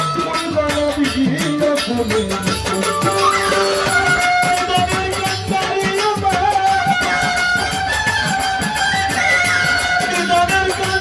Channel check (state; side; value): identical; both; correlation 1.00